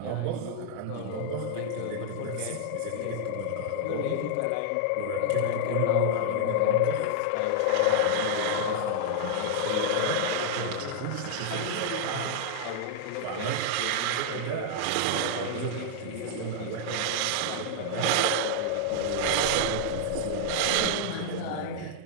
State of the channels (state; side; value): different; both; correlation 0.00